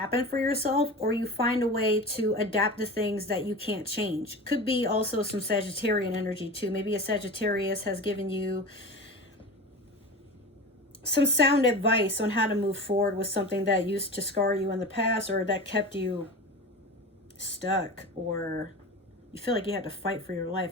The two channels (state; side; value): normal; both; correlation 0.31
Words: for yourself, or you find a way to adapt to things that you can't change. Could be also some Sagittarian energy too. Maybe a Sagittarius has given you some sound advice on how to move forward with something that used to scar you in the past, or that kept you stuck, or you feel like you had to fight for your